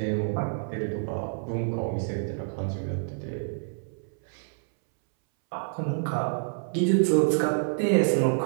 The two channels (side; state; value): left; silent; 60 dB below the other